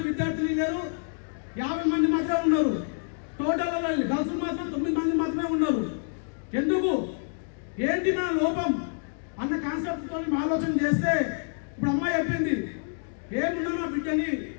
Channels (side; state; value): right; silent; digital silence